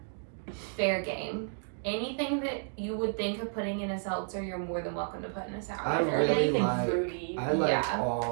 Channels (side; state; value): left; silent; digital silence